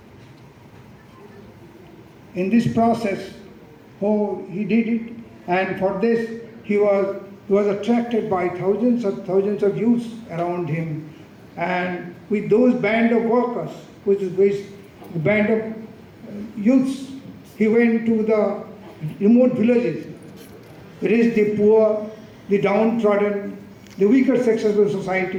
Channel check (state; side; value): identical; both; correlation 1.00